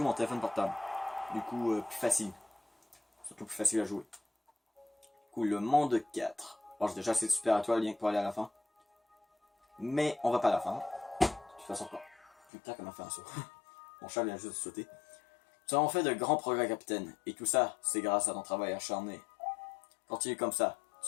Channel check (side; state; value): right; drops out; at 12.5 s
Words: mon téléphone portable. Du coup, plus facile. Surtout plus facile à jouer. Du coup, le monde 4. Bon, j'ai déjà assez de super étoiles rien que pour aller à la fin. Mais on va pas à la fin. De toute façon, pas. Putain, comme a fait un saut. Mon chat vient juste de sauter. Nous avons fait de grands progrès, capitaine. Et tout ça, c'est grâce à ton travail acharné. Continue comme ça.